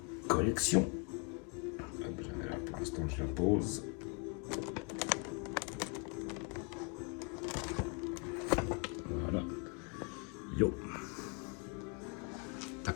collection. Là, pour l'instant, je la pose. Voilà. Yo.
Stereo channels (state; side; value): quieter; right; 35.7 dB